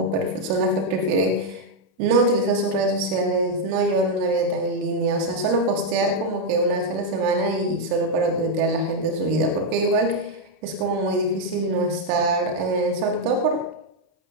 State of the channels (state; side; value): late; left; 32 ms